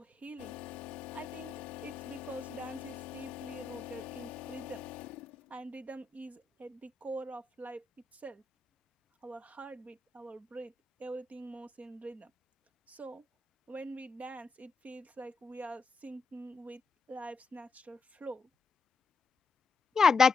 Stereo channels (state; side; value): quieter; right; 4.5 dB